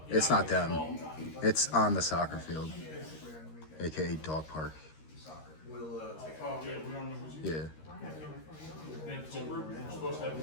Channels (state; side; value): late; right; 13 ms